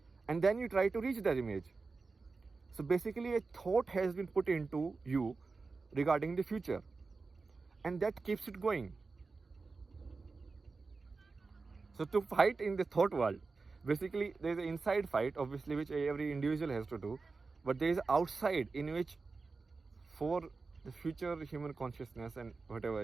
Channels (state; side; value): quieter; left; 4.1 dB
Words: And then you try to reach that image. So basically a thought has been put into you regarding the future. And that keeps it going. So to fight in the thought world, basically there is an inside fight, obviously, which every individual has to do. But there is outside in which, for the future human consciousness and whatever